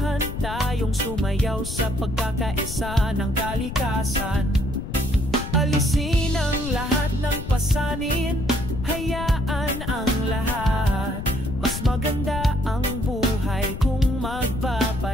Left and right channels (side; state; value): left; noise; rumble, 7 dB below the sound